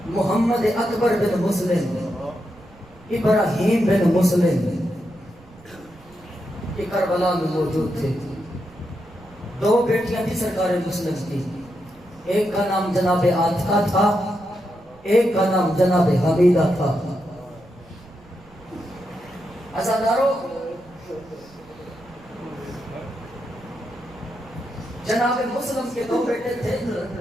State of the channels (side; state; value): right; noise; rumble, 25 dB below the sound